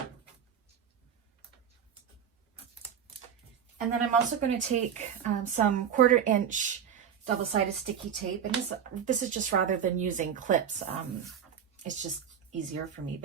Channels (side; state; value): left; quieter; 8.3 dB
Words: And then I'm also going to take some 1/4 inch double-sided sticky tape, and this is just rather than using clips. It's just easier for me,